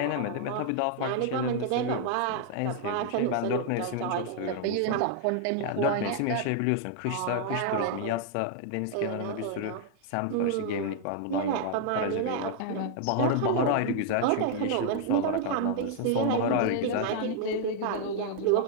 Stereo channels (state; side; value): different; both; correlation 0.00